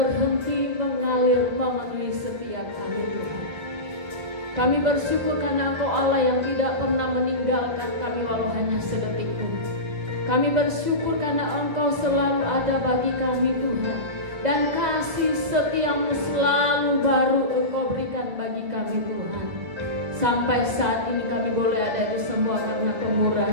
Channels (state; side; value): late; left; 2.0 ms